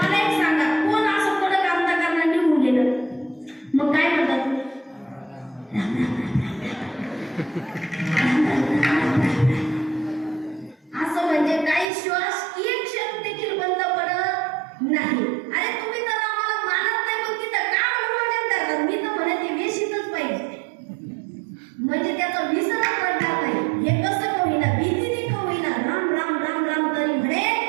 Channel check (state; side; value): drops out; left; at 11.9 s